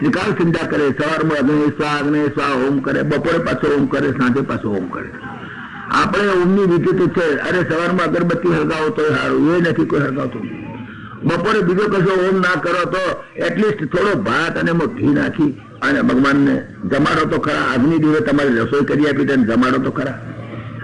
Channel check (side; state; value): both; identical; correlation 1.00